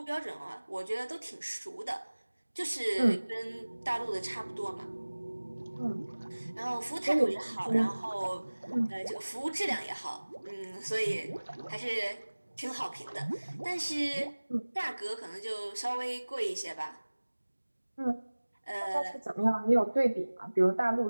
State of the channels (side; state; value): both; inverted; correlation -1.00